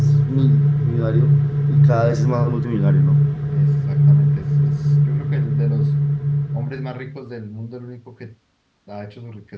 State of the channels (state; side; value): identical; both; correlation 1.00